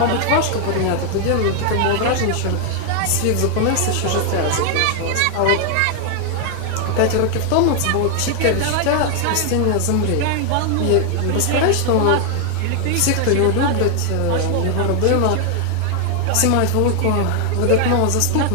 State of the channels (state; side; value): different; both; correlation 0.00